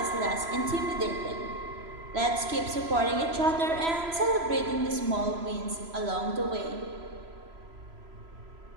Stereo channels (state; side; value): late; left; 3.0 ms